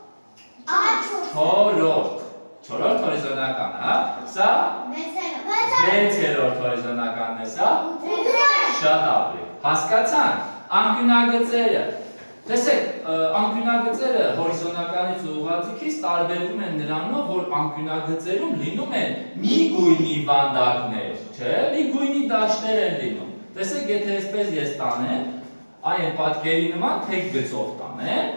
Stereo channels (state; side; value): inverted; both; correlation -1.00